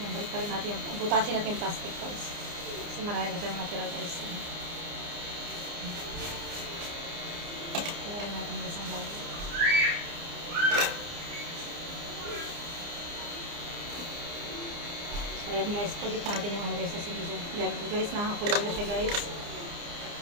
balik pa rin natin yung, butasin natin yung plastic guys. Kasi marami pa siyang natira guys. Kaya rin natin guys ang bago. So ayan guys, pagit natin yung ano guys sa sili dyan. Yan guys, nakakulo na siya guys.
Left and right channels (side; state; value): left; late; 29 ms